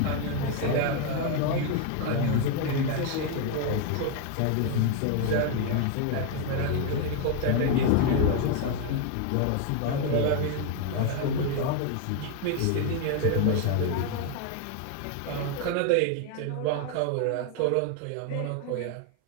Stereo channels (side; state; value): both; different; correlation 0.01